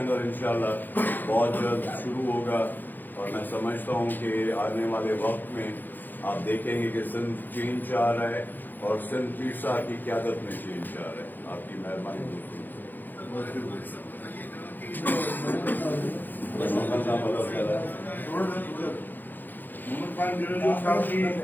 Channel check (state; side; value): late; right; 0.088 ms